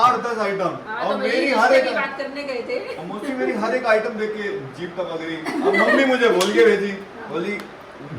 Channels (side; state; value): both; identical; correlation 1.00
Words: आइटम, और मेरी हर एक बात करने गए थे। मोस्टली मेरी हर एक आइटम देख के जीभ तक लग रही। अब मम्मी मुझे बोल के भेजी, बोली